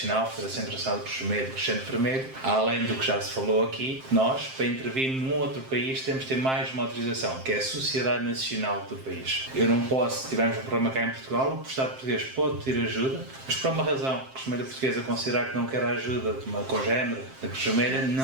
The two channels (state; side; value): late; left; 7.6 ms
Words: Federação Internacional de Cruz Vermelha e Crescente Vermelho, além do que já se falou aqui, nós, para intervir num outro país, temos de ter mais uma autorização, que é a Sociedade Nacional do país. Eu não posso, se tivermos um problema cá em Portugal, o Estado português pode pedir ajuda, mas por uma razão, a Cruz Vermelha Portuguesa considerar que não quer a ajuda de uma congénere da Cruz Vermelha,